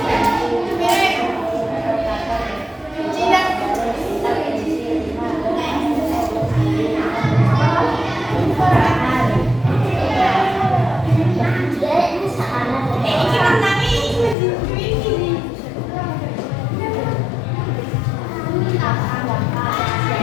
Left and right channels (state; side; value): drops out; right; at 14.4 s